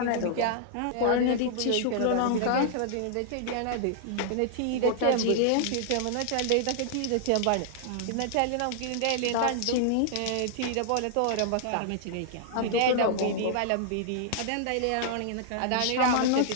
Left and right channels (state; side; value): different; both; correlation -0.01